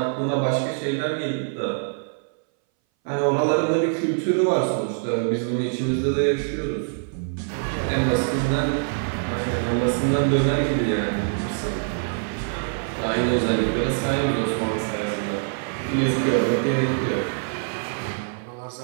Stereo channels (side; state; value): left; silent; 60 dB below the other